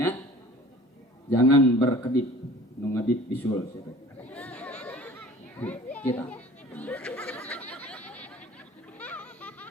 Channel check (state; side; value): normal; both; correlation 0.46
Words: Jangan berkedip, nu ngedip bisul siapa. Kita.